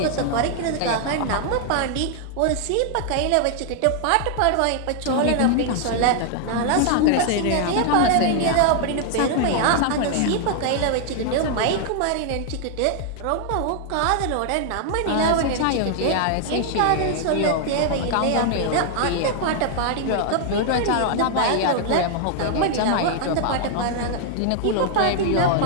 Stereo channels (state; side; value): different; both; correlation 0.00